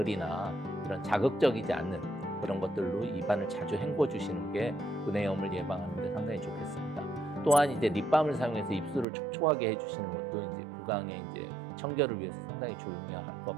이런 자극적이지 않는 그런 것들로 입안을 자주 헹궈 주시는 게 구내염을 예방하는 데 상당히 좋겠습니다. 또한 이제 립밤을 사용해서 입술을 촉촉하게 해주시는 것도 이제 구강의 이제 청결을 위해서 상당히 중요할 것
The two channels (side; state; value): left; drops out; at 9.1 s